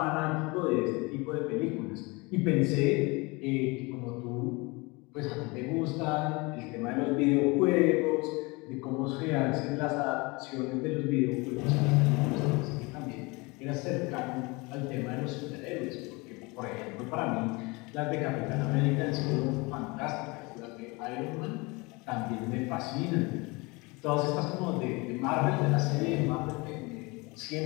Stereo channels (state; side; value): quieter; right; 26.0 dB